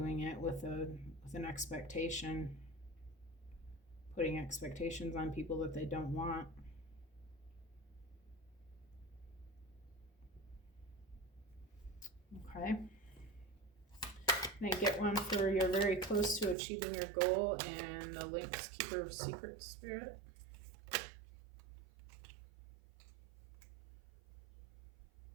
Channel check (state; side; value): drops out; left; at 16.6 s